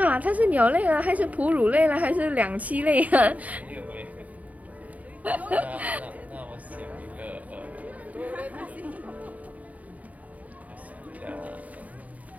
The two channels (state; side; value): late; left; 0.072 ms